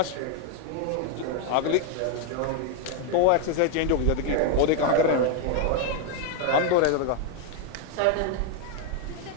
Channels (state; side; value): different; both; correlation 0.01